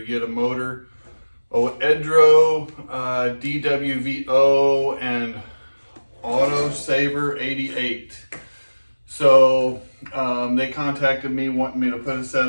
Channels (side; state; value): both; inverted; correlation -1.00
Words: Edro, DWVO, and Auto Saver 88. So they contacted me wanting me to put a set